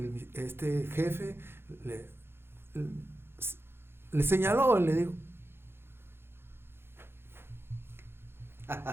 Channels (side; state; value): left; late; 0.11 ms